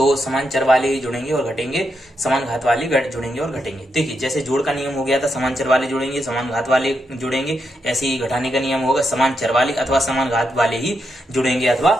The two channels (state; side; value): normal; both; correlation 0.83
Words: समान चर वाले ही जुड़ेंगे और घटेंगे, समान घात वाले जुड़ेंगे और घटेंगे। देखिए, जैसे जोड़ का नियम हो गया था समान चर वाले जुड़ेंगे समान घात वाले जुड़ेंगे, ऐसे ही घटाने का नियम होगा समान चर वाले अथवा समान घात वाले ही जुड़ेंगे अथवा